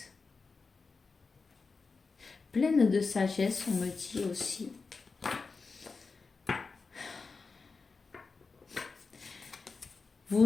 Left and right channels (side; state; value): right; quieter; 4.5 dB